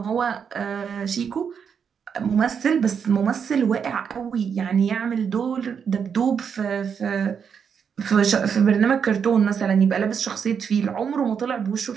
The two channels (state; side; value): quieter; left; 7.0 dB